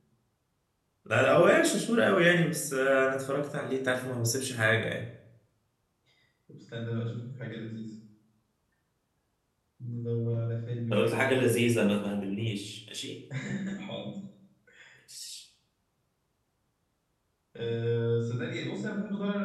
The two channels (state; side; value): identical; both; correlation 1.00